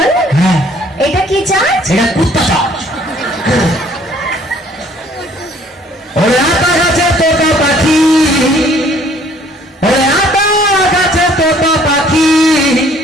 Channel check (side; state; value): both; normal; correlation 0.59